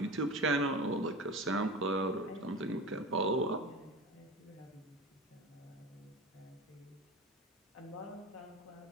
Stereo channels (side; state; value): both; normal; correlation 0.30